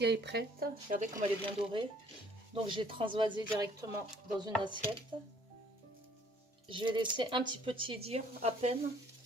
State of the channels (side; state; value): both; normal; correlation 0.60